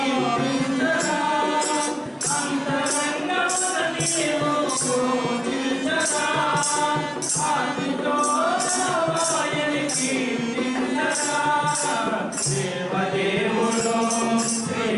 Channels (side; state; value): both; identical; correlation 1.00